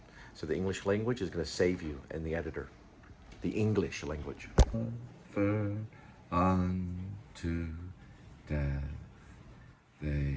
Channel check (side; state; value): both; identical; correlation 1.00